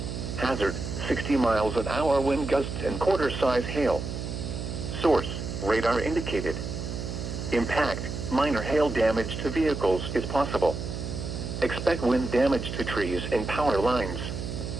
Hazard, 60 miles an hour wind gusts and quarter-size hail. Source, radar indicated. Impact, minor hail damage to vehicles is possible. Expect wind damage to trees and power lines.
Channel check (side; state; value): right; noise; hum, 5 dB below the sound